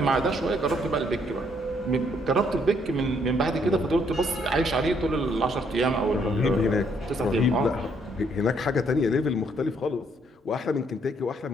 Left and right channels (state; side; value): normal; both; correlation 0.69